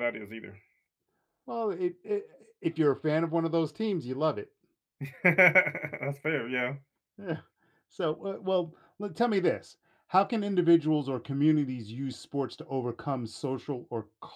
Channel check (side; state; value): both; identical; correlation 1.00